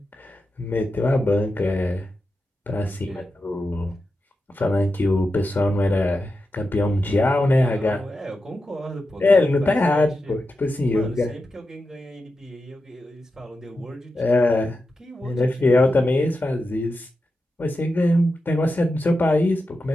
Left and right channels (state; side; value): normal; both; correlation 0.90